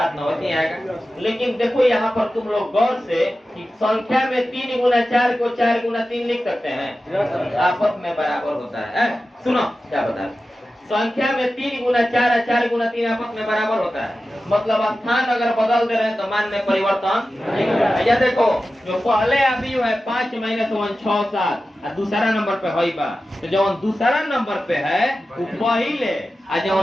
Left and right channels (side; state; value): both; normal; correlation 0.94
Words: 9 ऐसे आएगा। लेकिन देखो यहाँ पर तुम लोग गौर से कि संख्या में 3 गुना 4 को 4 गुना 3 लिख सकते हैं, आपस में बराबर होता है। सुनो क्या बता रहे, संख्या में 3 गुना 4 और 4 गुना 3 आपस में बराबर होता है, मतलब स्थान अगर बदल दे रहे हैं तो मान में परिवर्तन नहीं होगा। या देखो जो पहले आव्यूह है 5 - 1 6 7 और दूसरा नंबर पे है बा, तो जो दूसरा नंबर पे है वो पहले और जो